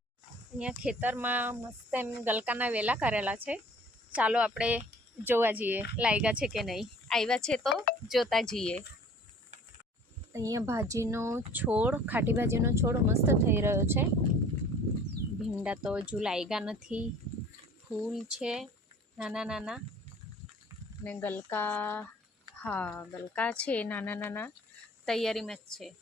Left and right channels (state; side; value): normal; both; correlation 0.50